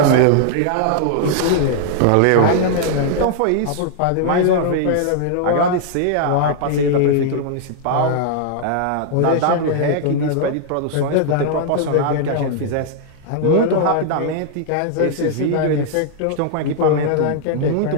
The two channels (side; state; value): both; different; correlation -0.01